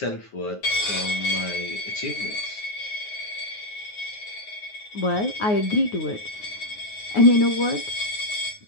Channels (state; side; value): late; right; 9.5 ms